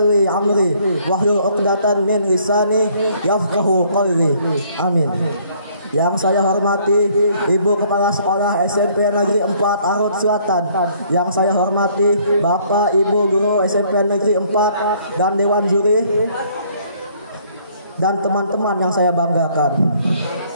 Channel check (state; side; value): inverted; both; correlation -0.62